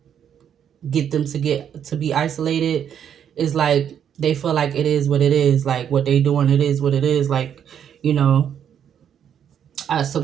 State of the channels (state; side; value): quieter; left; 8.8 dB